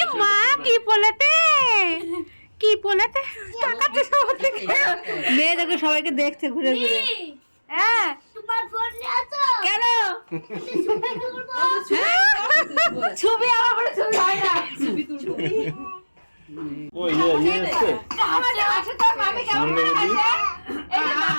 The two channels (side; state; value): both; inverted; correlation -1.00